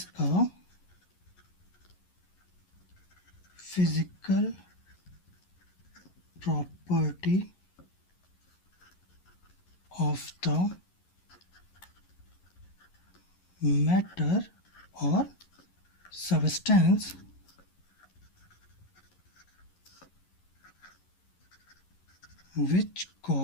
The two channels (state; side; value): late; right; 11 ms